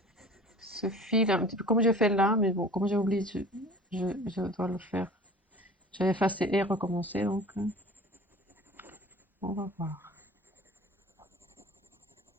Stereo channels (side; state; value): both; normal; correlation 0.42